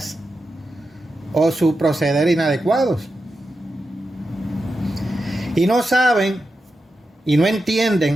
o su proceder inadecuados. Y no saben y no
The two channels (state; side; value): normal; both; correlation 0.89